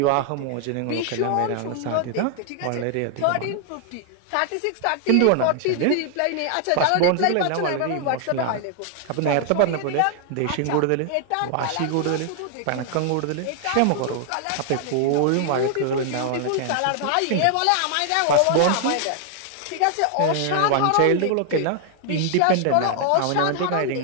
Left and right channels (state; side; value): different; both; correlation 0.00